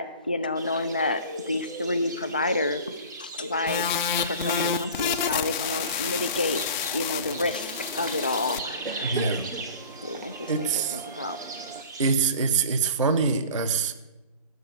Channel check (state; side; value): inverted; both; correlation -0.39